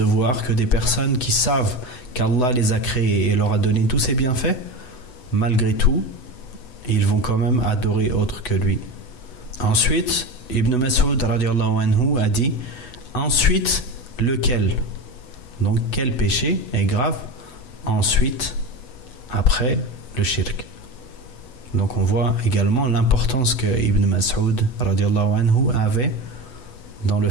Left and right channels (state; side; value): late; right; 8.0 ms